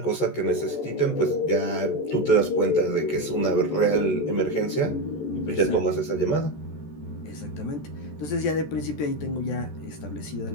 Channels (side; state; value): right; late; 14 ms